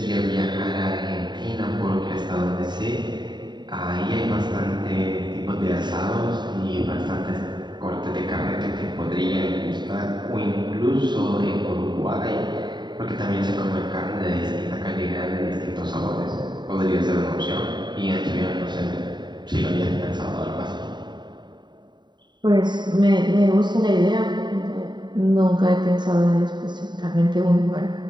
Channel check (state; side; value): late; left; 0.21 ms